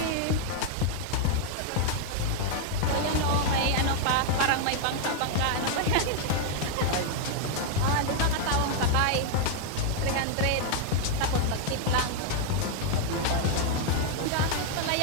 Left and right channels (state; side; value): different; both; correlation 0.00